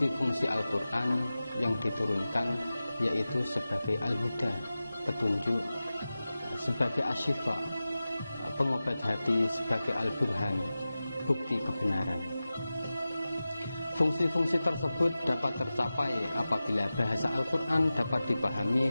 Al-Quran yang diturunkan, yaitu sebagai al-huda, petunjuk, sebagai asyifa, pengobat hati, sebagai al-burhan, bukti kebenaran. Fungsi-fungsi tersebut dapat tercapai apabila bahasa Al-Quran dapat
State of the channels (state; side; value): inverted; both; correlation -0.95